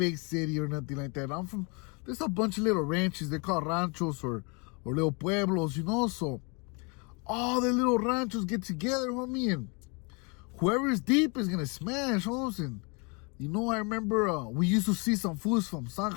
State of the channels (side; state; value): right; quieter; 31.9 dB